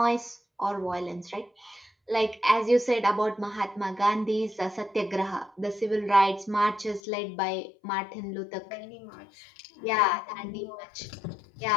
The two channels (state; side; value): drops out; right; at 7.0 s